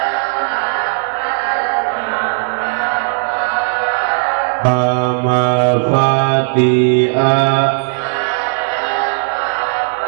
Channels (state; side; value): silent; left; digital silence